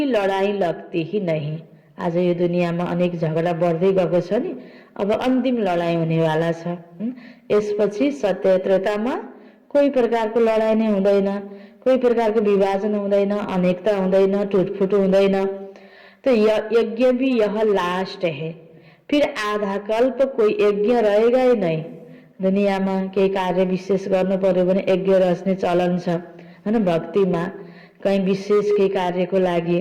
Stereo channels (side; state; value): both; identical; correlation 1.00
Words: लड़ाई लगती ही नहीं। आज यो दुनियाँमा अनेक झगडा बढ्दै गएको छ नि, अब अन्तिम लडाई हुनेवाला छ। यसपछि सत्य त्रेतामा कोही प्रकारको लडाई नै हुँदैन, कोही प्रकारको विभाजन हुँदैन, अनेकता हुँदैन, टुटफुट हुँदैन। तो यज्ञ भी यह लास्ट है, फिर आधा कल्प कोही यज्ञ रहेगा ही नहीं। दुनियाँमा केही कार्य विशेष गर्नु पर्यो भने यज्ञ रच्ने चलन छ, हैन, भक्तिमा कहीँ विशेष केही कार्यको